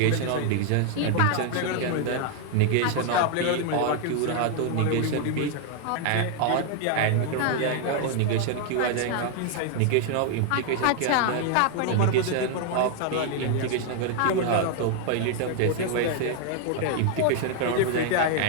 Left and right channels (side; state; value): both; different; correlation 0.00